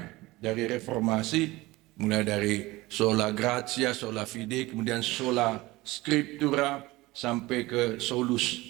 dari reformasi, mulai dari sola gratia, sola fide, kemudian sola scriptura, sampai ke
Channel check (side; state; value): left; quieter; 20.1 dB